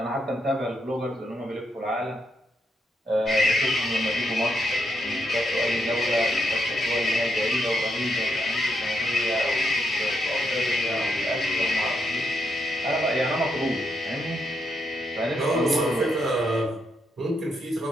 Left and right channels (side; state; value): both; normal; correlation 0.80